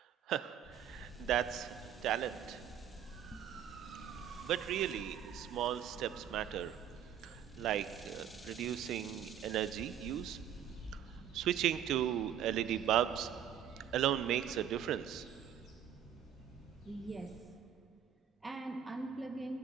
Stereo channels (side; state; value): left; quieter; 9.4 dB